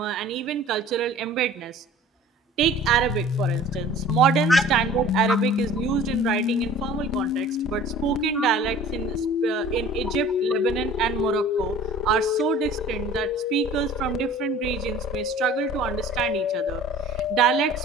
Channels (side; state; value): both; normal; correlation 0.47